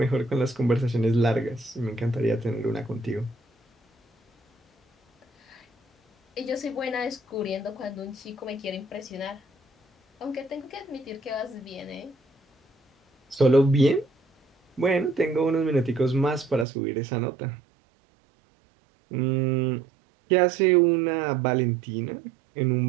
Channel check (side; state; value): left; drops out; at 16.7 s